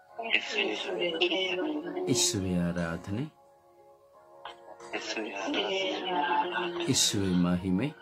ಯೇಸುವೇ ಆರಾಧನೆ, ಯೇಸುವೇ ಮಹಿಮೆ,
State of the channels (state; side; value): identical; both; correlation 1.00